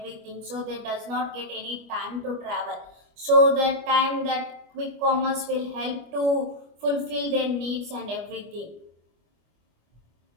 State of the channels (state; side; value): late; left; 25 ms